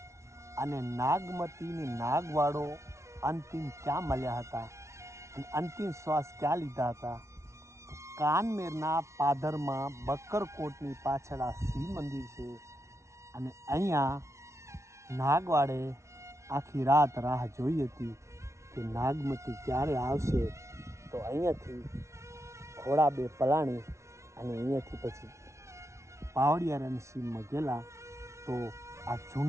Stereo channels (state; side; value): late; left; 0.13 ms